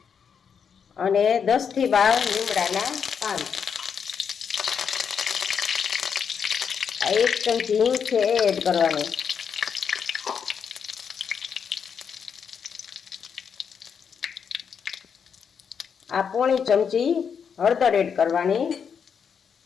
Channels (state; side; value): quieter; right; 6.9 dB